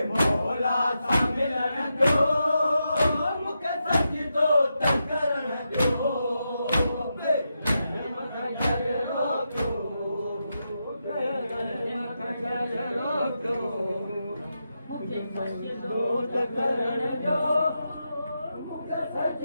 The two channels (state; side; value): inverted; both; correlation -0.86